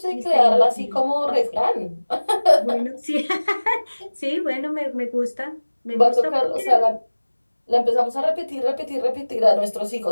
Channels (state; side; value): inverted; both; correlation -1.00